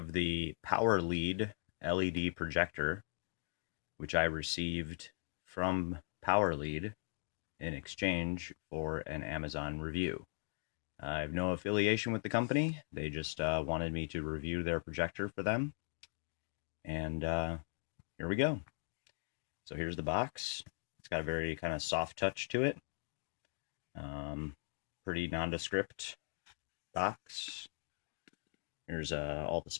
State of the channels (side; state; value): right; silent; digital silence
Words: the PowerLead LED projector, which I received from PowerLead in exchange for an Amazon review. I have no affiliation with the company. They just wanted me to review their projector for them. And here we go. So here's the box. It's got a very kind of soft touch to it. Pretty nondescript box. Here's all the